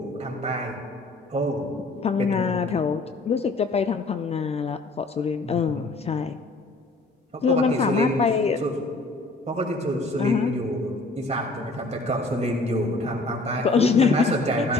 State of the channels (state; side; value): quieter; right; 3.1 dB